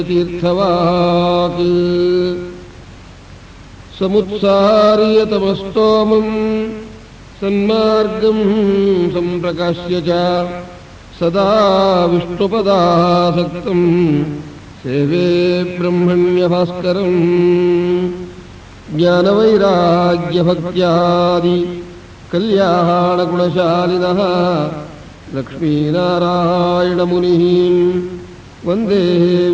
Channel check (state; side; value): identical; both; correlation 1.00